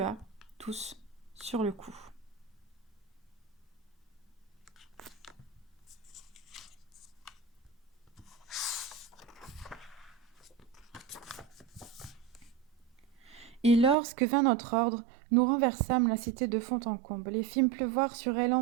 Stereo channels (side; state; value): left; drops out; at 14.0 s